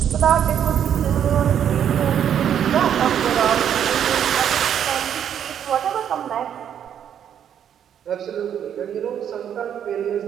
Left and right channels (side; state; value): left; quieter; 9.2 dB